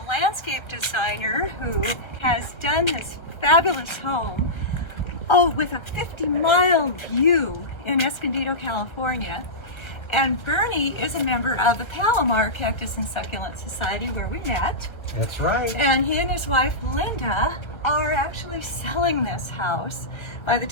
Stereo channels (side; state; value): right; late; 1.3 ms